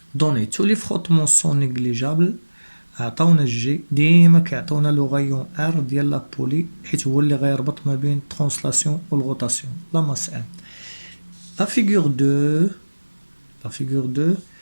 Données. Tous les frottements sont négligeables. عطاونا الجي ديما كيعطونا لو غايون ار ديال لا بولي حيت هو اللي غيربط ما بين الترانسلاسيون والغوتاسيون. لا ماس ام. La figure 2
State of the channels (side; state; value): both; inverted; correlation -1.00